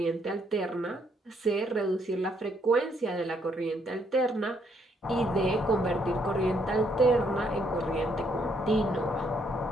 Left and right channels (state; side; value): normal; both; correlation 0.71